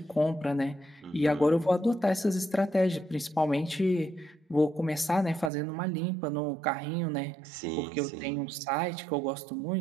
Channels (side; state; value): left; drops out; at 5.5 s